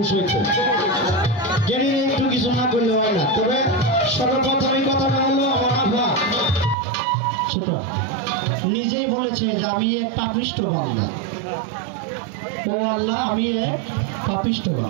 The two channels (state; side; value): drops out; left; at 6.8 s